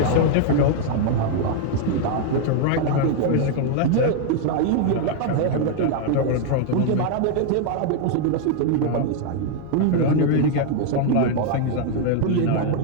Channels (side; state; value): both; different; correlation 0.00